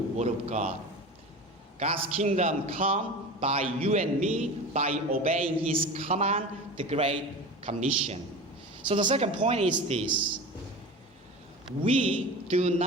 of God. God's kingdom come by you and me by obeying His command, the Great Commission. So the second point is this. We do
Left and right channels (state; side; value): normal; both; correlation 0.32